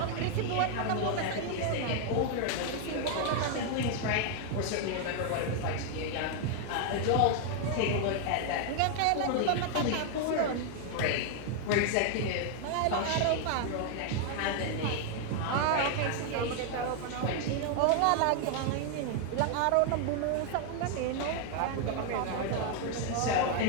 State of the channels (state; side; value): different; both; correlation 0.00